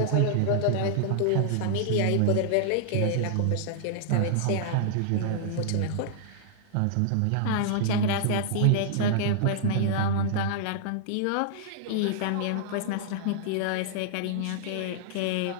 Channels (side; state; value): both; different; correlation -0.01